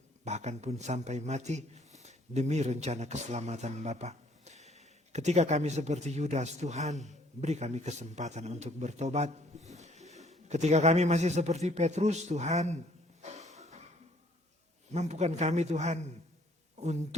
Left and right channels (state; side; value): normal; both; correlation 0.61